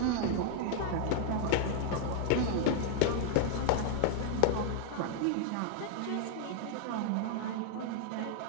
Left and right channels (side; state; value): both; different; correlation 0.00